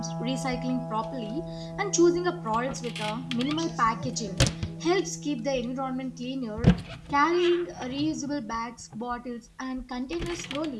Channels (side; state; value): both; identical; correlation 1.00